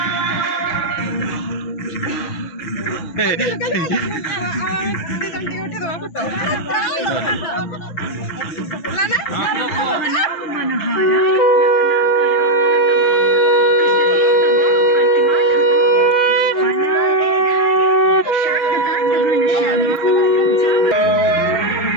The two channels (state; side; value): late; right; 6.0 ms